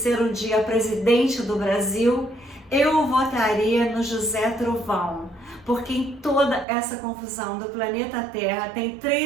um dia presidente do Brasil, eu votaria no José Trovão, porque em toda essa confusão do planeta Terra tem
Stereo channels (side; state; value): left; drops out; at 6.7 s